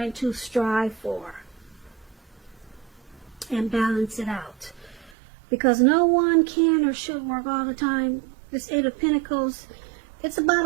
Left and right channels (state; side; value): drops out; left; at 5.2 s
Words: to strive for, and balance it out. Because no one can or should work all the time. This Eight of Pentacles, it's